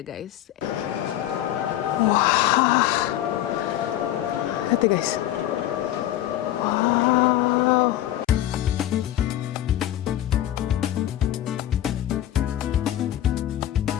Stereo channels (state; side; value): quieter; right; 13.0 dB